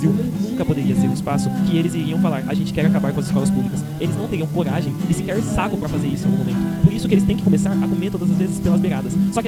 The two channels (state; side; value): identical; both; correlation 1.00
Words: nunca poderia ser um espaço que eles iriam falar, a gente quer acabar com as escolas públicas. Eles não teriam coragem e sequer saco para fazer isso no momento. Por isso que eles têm que começar a comer todas as vezes pelas beiradas. Só